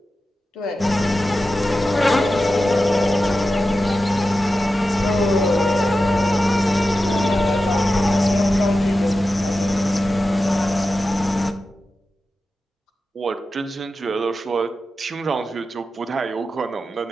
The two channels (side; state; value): both; normal; correlation 0.92